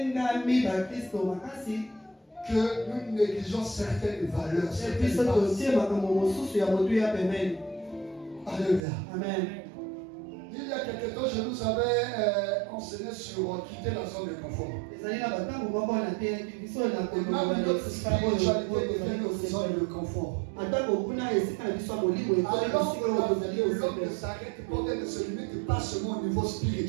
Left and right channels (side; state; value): left; drops out; at 8.8 s